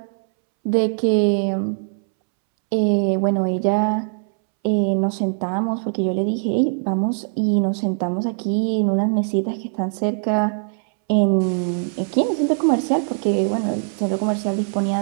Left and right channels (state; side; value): silent; left; 65 dB below the other